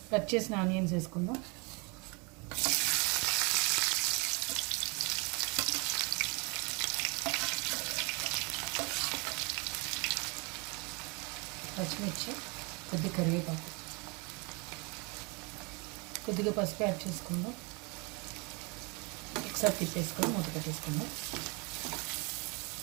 కట్ చేసిన ఆనియన్స్ వేసుకుందాం. పచ్చిమిర్చి, కొద్దిగా కరివేపాకు, కొద్దిగా పసుపు యాడ్ చేసుకుందాం. ఒకసారి తిప్పేసుకొని మూత పెట్టేసుకుందాం.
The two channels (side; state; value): left; quieter; 30.3 dB